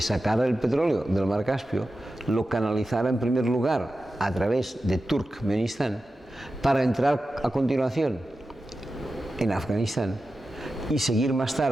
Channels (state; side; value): normal; both; correlation 0.93